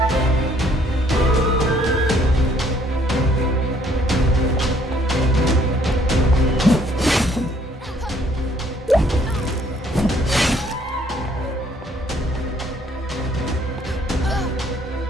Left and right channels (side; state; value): both; normal; correlation 0.63